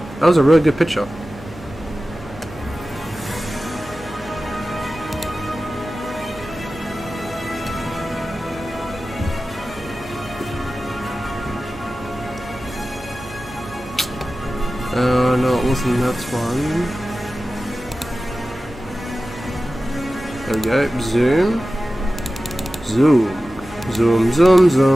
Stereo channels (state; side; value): normal; both; correlation 0.95